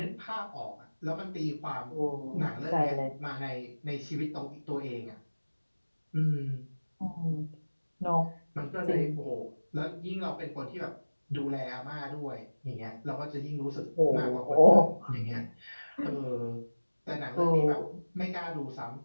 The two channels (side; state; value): both; inverted; correlation -1.00